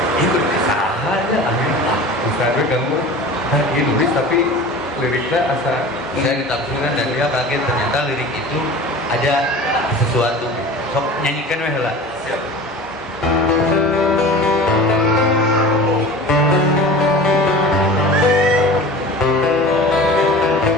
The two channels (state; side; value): normal; both; correlation 0.37